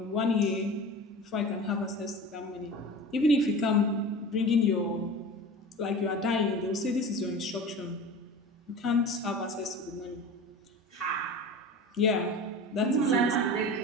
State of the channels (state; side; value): normal; both; correlation 0.34